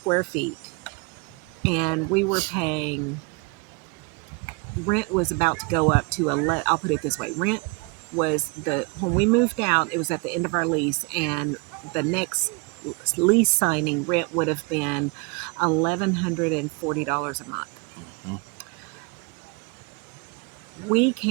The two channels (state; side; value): quieter; left; 30.0 dB